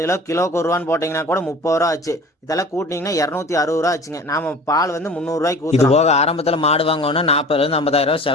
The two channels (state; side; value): normal; both; correlation 0.41